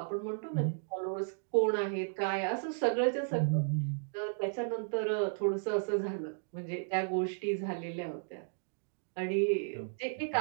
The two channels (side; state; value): left; silent; digital silence